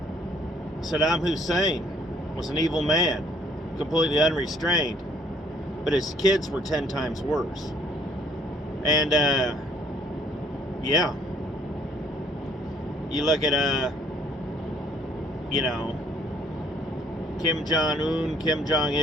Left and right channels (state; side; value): normal; both; correlation 0.62